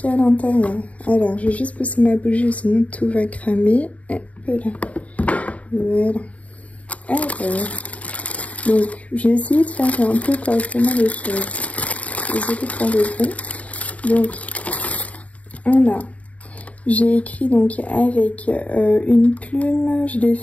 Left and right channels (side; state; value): right; late; 0.068 ms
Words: y a à l'intérieur. Alors je vais juste pousser ma bougie, sinon tout va cramer. Hop là. Voilà. Alors, donc j'ai essayé de faire un peu correctement les choses. Désolée pour le bruit. Donc on a, j'ai écrit donc avec une plume, je l'ai